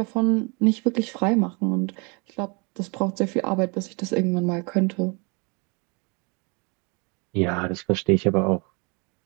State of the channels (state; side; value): quieter; left; 31.5 dB